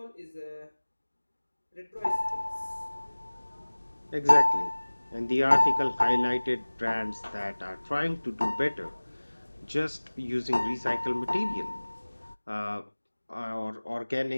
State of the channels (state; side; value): inverted; both; correlation -1.00